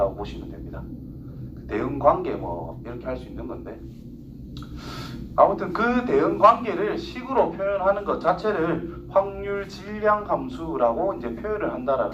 보시면 됩니다. 대응 관계 뭐 이렇게 할 수 있는 건데, 아무튼 그 대응 관계를 식으로 표현하는 것 자체를 확률 질량 함수라고 이제 표현을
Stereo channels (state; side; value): identical; both; correlation 1.00